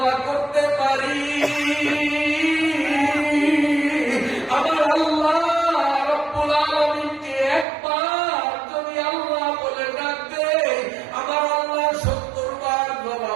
করতে পারি, আমার আল্লাহ রব্বুল আলামিনকে একবার যদি আল্লাহ বলে ডাকতে, আমার আল্লাহ 70 বার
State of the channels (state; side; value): drops out; left; at 7.7 s